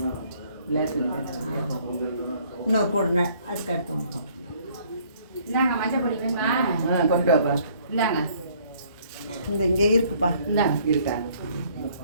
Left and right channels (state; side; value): inverted; both; correlation -0.61